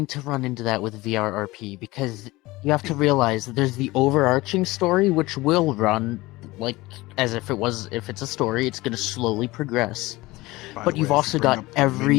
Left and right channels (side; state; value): right; quieter; 20.2 dB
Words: to run into that with VRRP, because you have to realize that there's the overarching story, which will run like as if it's a story. It's going to slowly progress. But you've also got